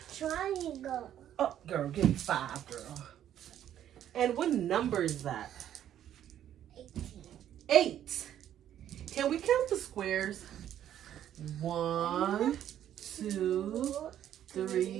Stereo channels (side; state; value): left; quieter; 10.9 dB